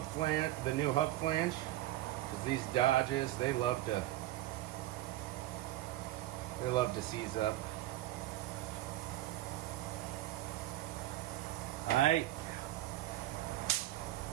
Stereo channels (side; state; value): left; quieter; 15.0 dB